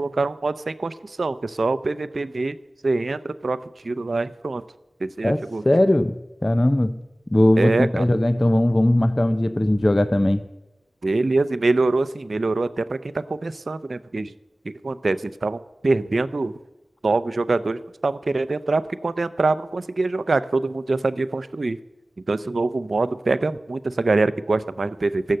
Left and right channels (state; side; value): normal; both; correlation 0.97